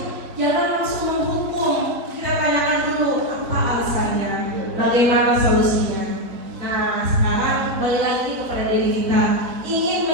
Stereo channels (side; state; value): left; late; 4.1 ms